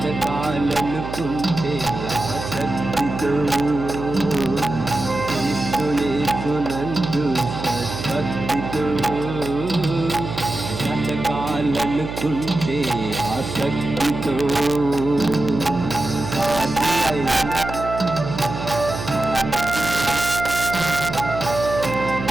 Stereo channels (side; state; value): right; noise; hum, 8 dB below the sound